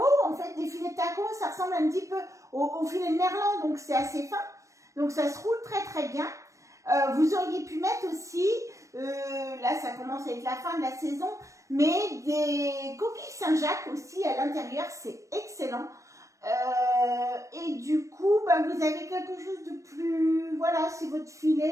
En fait, des filets de taco, ça ressemble un petit peu au filet de merlan, donc c'est assez fin. Donc ça se roule très très bien. Vous auriez pu mettre aussi, là ça commence à être la fin de la saison, mais des coquilles Saint-Jacques aussi à l'intérieur, c'est excellent. Et du coup, vous avez quelque chose de plus, voilà, c'est votre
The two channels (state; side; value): late; left; 0.15 ms